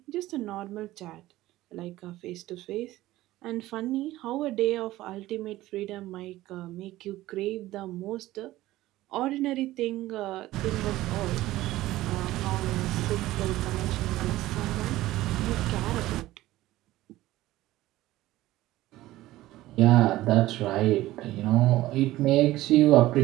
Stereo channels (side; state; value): left; quieter; 16.4 dB